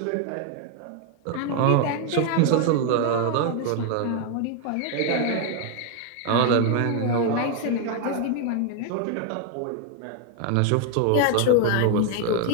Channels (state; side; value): different; both; correlation 0.01